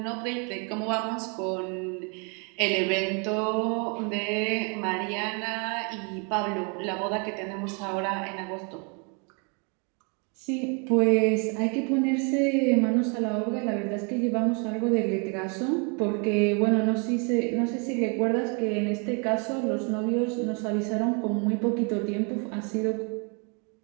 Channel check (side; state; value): left; quieter; 35.2 dB